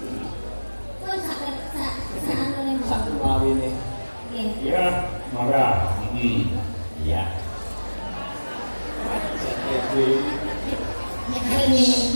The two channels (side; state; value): both; inverted; correlation -1.00